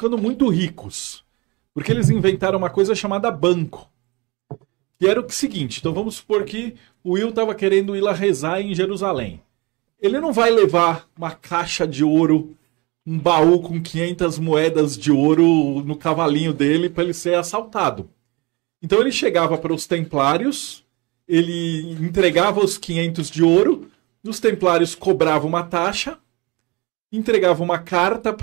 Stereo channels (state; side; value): quieter; left; 25.7 dB